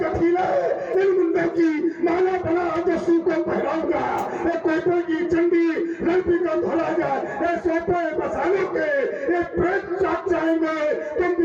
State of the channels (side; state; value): both; identical; correlation 1.00